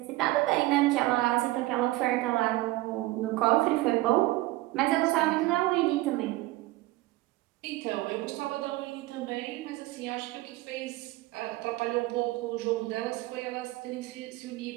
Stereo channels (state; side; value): quieter; left; 18.9 dB